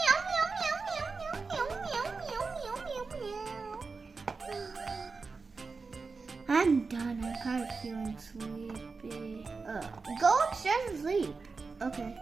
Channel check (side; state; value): left; quieter; 4.4 dB